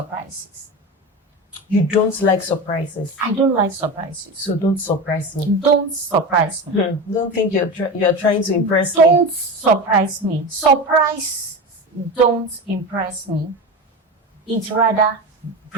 You don't like surprises? I don't like surprises. So don't surprise me. Don't surprise me. Don't think you're trying to impress me. Don't surprise me. Surprise don't impress me. It rather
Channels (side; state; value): both; normal; correlation 0.25